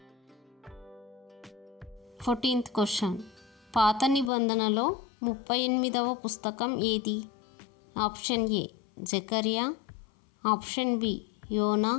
14th question. పాత నిబంధనలో 38వ పుస్తకం ఏది? ఆప్షన్ ఏ జకర్యా, ఆప్షన్ బి యోనా,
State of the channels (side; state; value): right; drops out; at 4.3 s